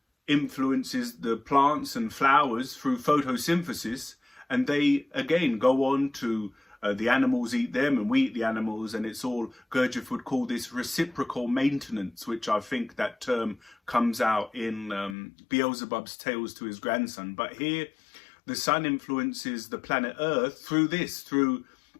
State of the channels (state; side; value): drops out; right; at 15.2 s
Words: influences the plants and flowers through photosynthesis, and they again go on to the animals eat them and we eat the animals, and it's all, Gurdjieff would call this reciprocal maintenance, which I think that term comes out in Beelzebub's Tales to his grandson. But here the sun influences the planet Earth through this, through